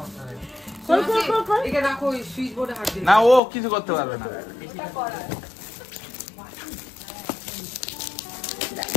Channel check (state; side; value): drops out; right; at 3.4 s